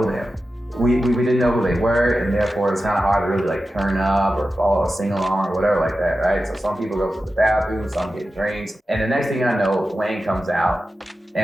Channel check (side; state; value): both; normal; correlation 0.93